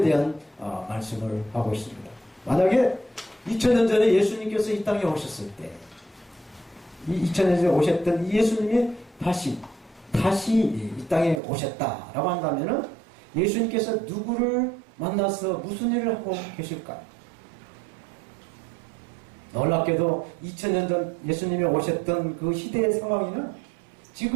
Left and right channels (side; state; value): left; drops out; at 11.4 s